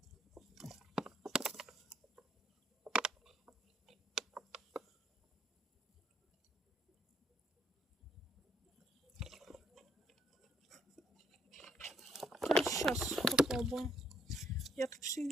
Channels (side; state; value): both; normal; correlation 0.69